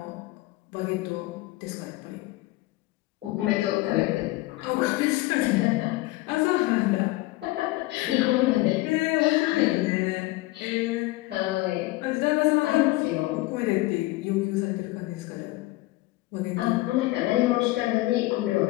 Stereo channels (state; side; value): quieter; right; 19.6 dB